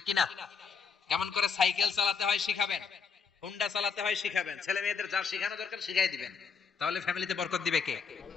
কিনা? কেমন করে সাইকেল চালাতে হয় শিখাবেন, হুন্ডা চালাতে হয় শিখাবেন। ছেলে মেয়েদের যা শেখানো দরকার শিখাই দিবেন, তাহলে ফ্যামিলিতে বরকত দিবে কে?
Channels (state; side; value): quieter; right; 5.8 dB